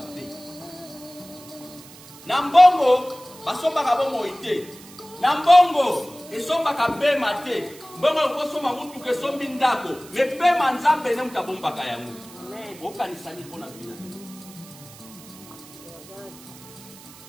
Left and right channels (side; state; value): right; noise; hiss, 20 dB below the sound